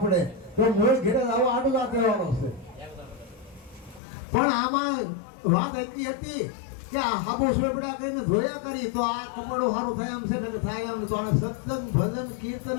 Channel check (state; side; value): drops out; right; at 4.0 s